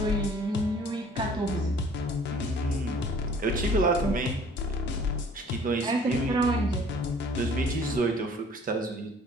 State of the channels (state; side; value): normal; both; correlation 0.53